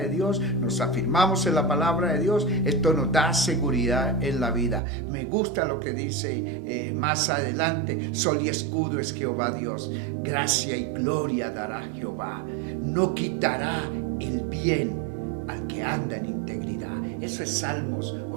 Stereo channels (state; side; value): drops out; left; at 4.8 s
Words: Dios, nos afirmamos en la palabra de Dios. Esto nos da seguridad en la vida. Me gusta lo que dice más adelante: sol y escudo es Jehová Dios, gracia y gloria dará Jehová, no quitará el bien al que anda en integridad. Eso es Salmos